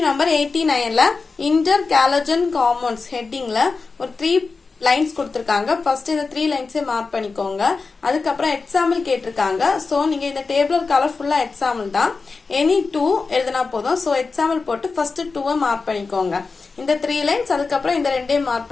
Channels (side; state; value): right; quieter; 4.3 dB